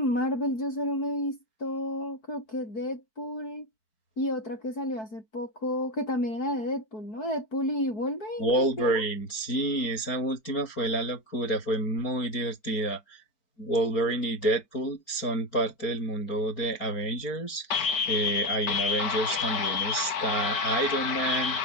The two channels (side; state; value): right; late; 4.6 ms